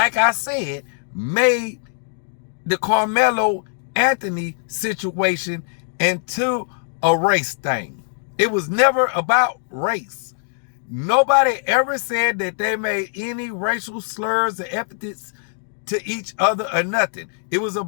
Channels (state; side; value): silent; right; digital silence